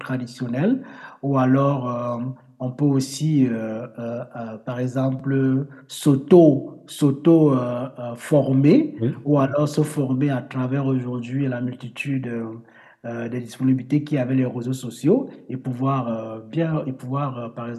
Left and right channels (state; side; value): identical; both; correlation 1.00